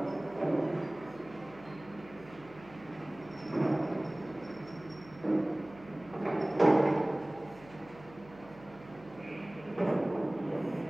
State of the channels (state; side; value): noise; right; hum, 21 dB below the sound